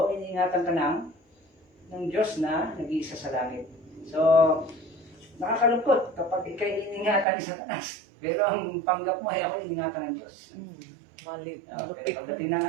iniingatan ka ng Diyos na nag-iisa sa langit. So, nakakalungkot kapag ikay iniingatan ni Satanas. Pero ang panggap mo ay ako iniingatan ng Diyos. Malit. Pero pagdating ng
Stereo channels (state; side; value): drops out; left; at 7.2 s